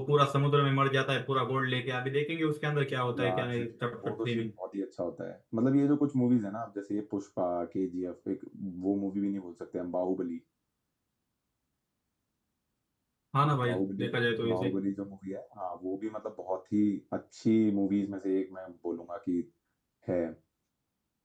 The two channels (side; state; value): both; identical; correlation 1.00